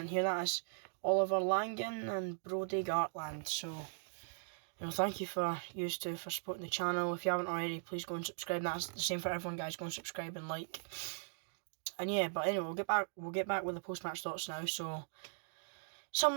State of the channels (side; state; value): left; silent; digital silence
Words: hear that, it's Oliver Langan and Brody Gartland. So, you know, thank you for supporting the channel. If you haven't already, please go and subscribe. That's the same for everyone, guys. Go and subscribe and like. And yeah, but anyway, we'll get back with the post-match thoughts now. So,